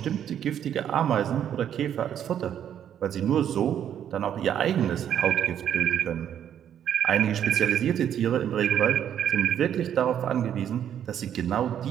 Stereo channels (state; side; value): quieter; left; 9.7 dB